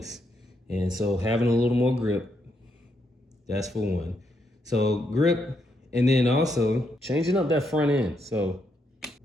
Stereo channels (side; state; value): both; normal; correlation 0.78